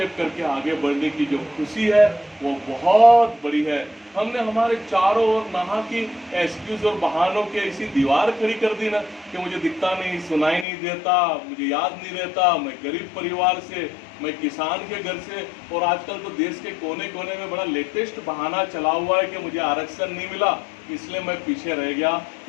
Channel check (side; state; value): right; drops out; at 10.7 s